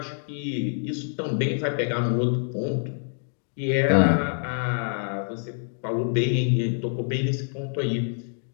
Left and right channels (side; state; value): right; silent; digital silence